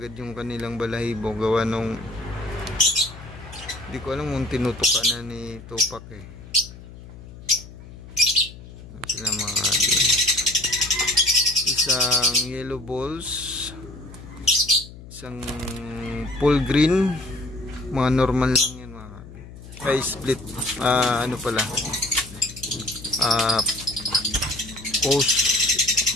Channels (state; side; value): noise; left; hum, 16 dB below the sound